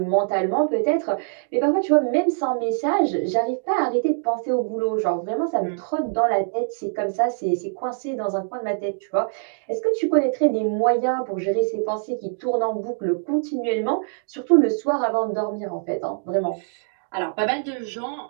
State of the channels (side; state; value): left; silent; digital silence